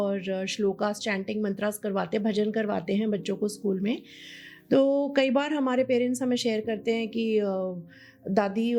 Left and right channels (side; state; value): both; identical; correlation 1.00